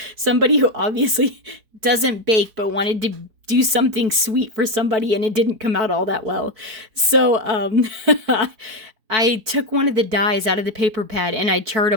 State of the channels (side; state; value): left; late; 4.6 ms